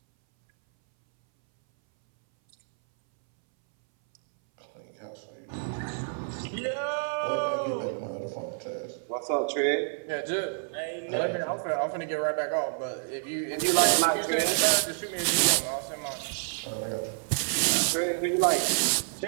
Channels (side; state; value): left; silent; 59 dB below the other